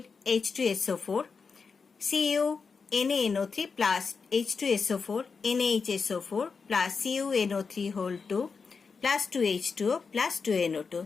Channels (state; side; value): quieter; right; 5.2 dB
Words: H2SO4, CuNaNO3 plus H2SO4, NaHSO4 plus CuNO3 whole 2 plus 2H2O plus 2NO2.